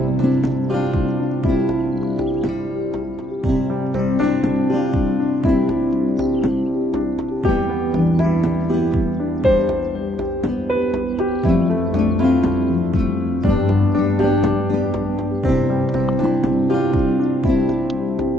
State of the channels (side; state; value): both; normal; correlation 0.72